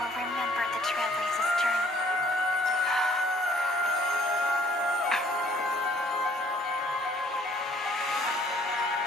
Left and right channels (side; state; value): both; normal; correlation 0.59